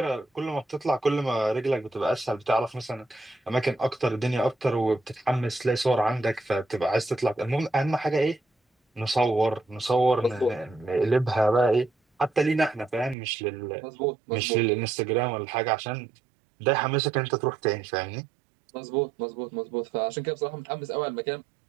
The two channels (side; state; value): left; drops out; at 13.2 s